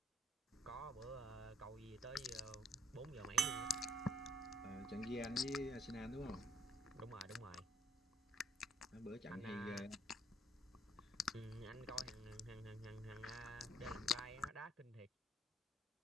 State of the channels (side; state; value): both; normal; correlation 0.67